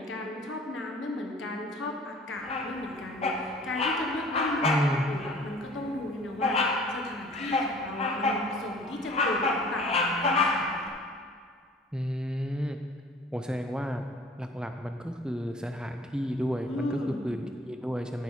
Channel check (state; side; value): normal; both; correlation 0.49